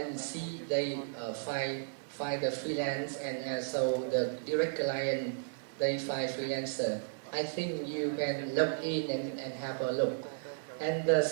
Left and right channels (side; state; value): left; silent; digital silence